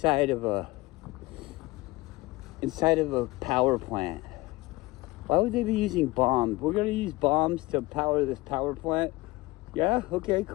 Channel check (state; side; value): quieter; right; 21.1 dB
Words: of a power plant? Why would they be using bombs? We're going to use bombs to power this power plant? Yeah, okay,